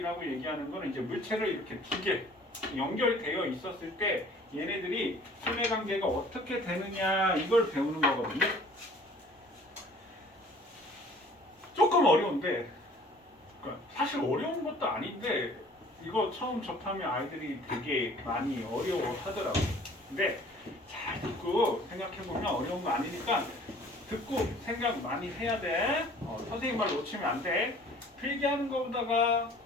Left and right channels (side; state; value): both; normal; correlation 0.51